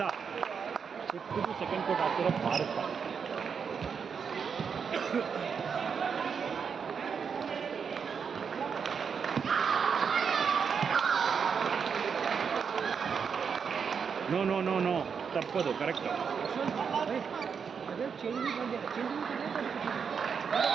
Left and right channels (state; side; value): quieter; left; 6.4 dB